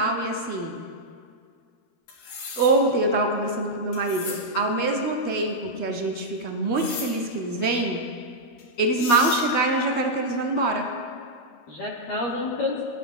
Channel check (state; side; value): late; right; 13 ms